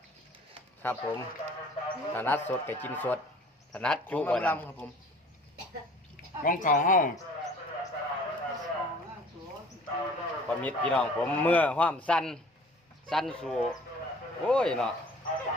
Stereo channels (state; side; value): normal; both; correlation 0.49